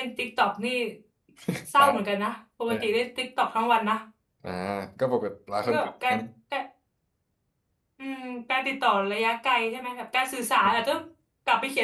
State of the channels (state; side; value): identical; both; correlation 1.00